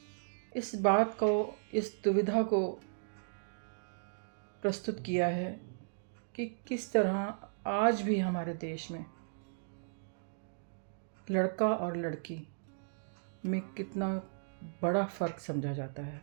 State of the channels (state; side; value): silent; left; digital silence